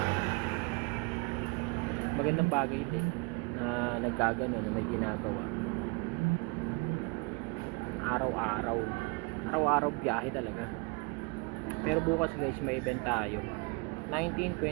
Magandang bagay din na nagkagano, na may ginagawa. Araw-araw biyahe talaga. Pero bukas guys may event tayo, 19,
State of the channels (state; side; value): quieter; left; 30.4 dB